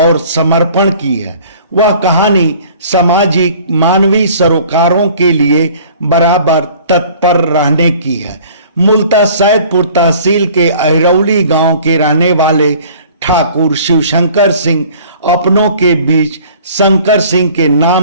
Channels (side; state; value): both; inverted; correlation -0.50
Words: समर्पण की है। वह कहानी सामाजिक मानवीय सरोकारों के लिए बराबर तत्पर रहने की है। मूलतः सैदपुर तहसील के अहिरौली गांव के रहने वाले ठाकुर शिवशंकर सिंह अपनों के बीच शंकर सिंह के